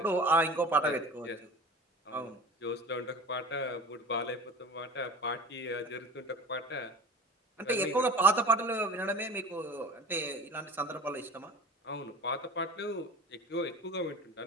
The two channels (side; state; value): both; normal; correlation 0.37